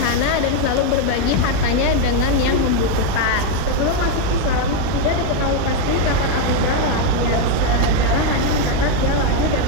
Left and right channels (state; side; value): different; both; correlation 0.02